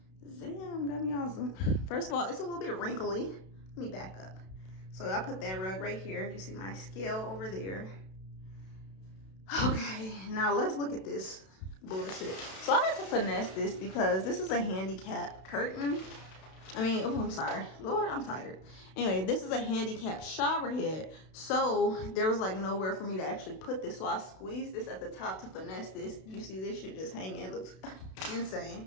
Damn, got me awesome. First of all, it's a little bit wrinkly. Let me back up. So I put that rug right here. You see my scale over there. Okay, now let's look at this bullshit. So I had to finesse this because this is a handicap curtain. Oh, I'm sorry. Lord, I'm tired. Anyway, this is a handicap shower head. So there was like nowhere for me to actually put this. So I squeezed this at the top to finesse this. You see this shit just hanging. It looks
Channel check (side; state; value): right; late; 32 ms